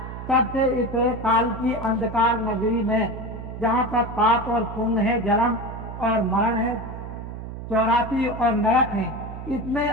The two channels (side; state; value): right; noise; hum, 9 dB below the sound